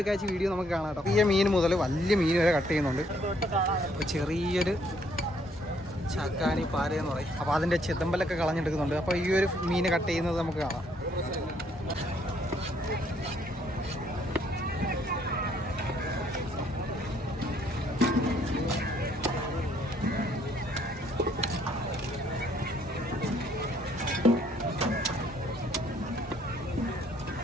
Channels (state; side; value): normal; both; correlation 0.67